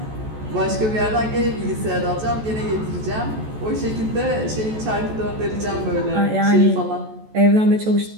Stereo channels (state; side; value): late; left; 14 ms